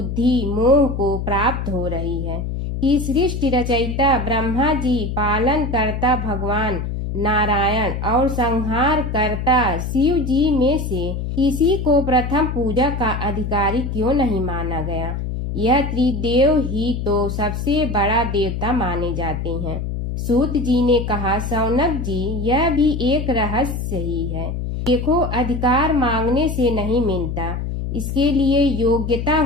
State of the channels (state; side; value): noise; left; hum, 4 dB below the sound